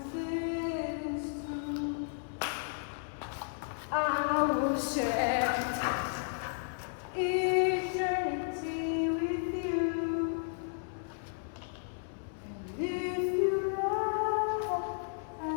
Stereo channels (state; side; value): silent; right; 55 dB below the other